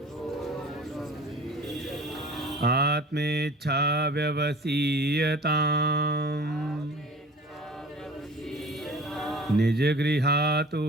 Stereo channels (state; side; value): normal; both; correlation 0.43